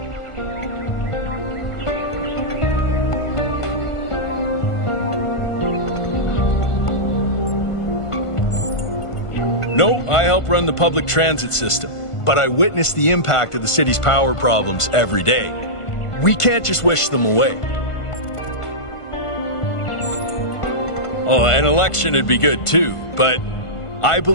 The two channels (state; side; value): late; right; 1.5 ms